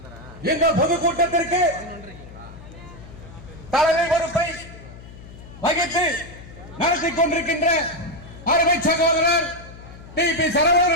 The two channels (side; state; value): left; noise; hum, 17 dB below the sound